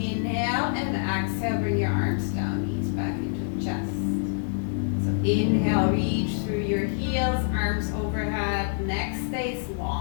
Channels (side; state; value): right; silent; digital silence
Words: and exhale, bring your arms down, knees back into the chest. So inhale, reach through your heels, arms overhead, neck stays